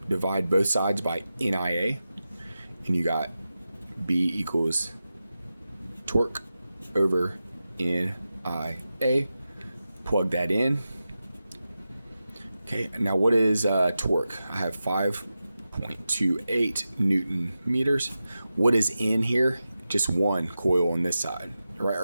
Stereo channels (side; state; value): both; inverted; correlation -0.92